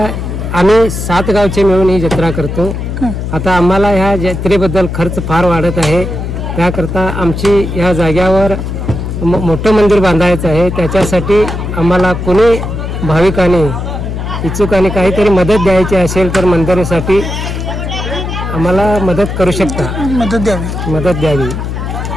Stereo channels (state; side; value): noise; left; hum, 5 dB below the sound